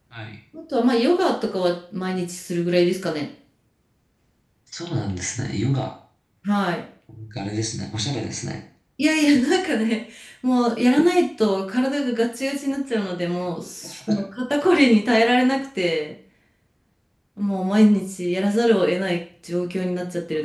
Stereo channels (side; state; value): both; identical; correlation 1.00